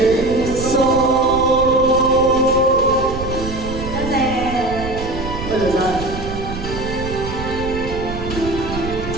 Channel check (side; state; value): right; noise; rumble, 8 dB below the sound